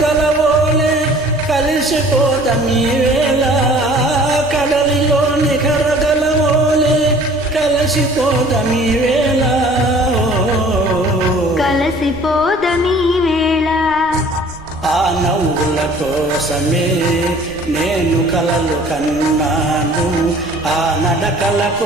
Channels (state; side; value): noise; right; rumble, 21 dB below the sound